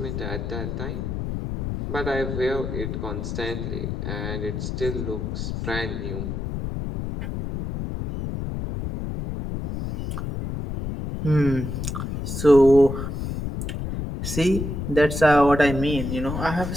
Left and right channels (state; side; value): noise; left; rumble, 4 dB below the sound